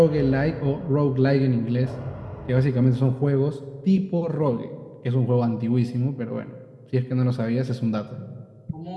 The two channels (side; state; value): both; identical; correlation 1.00